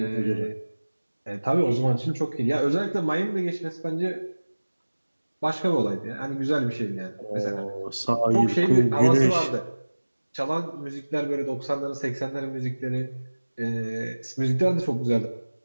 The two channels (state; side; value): inverted; both; correlation -1.00